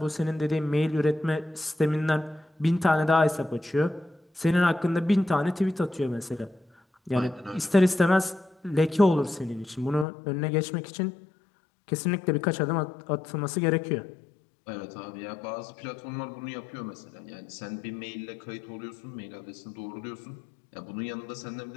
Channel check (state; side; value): drops out; right; at 10.1 s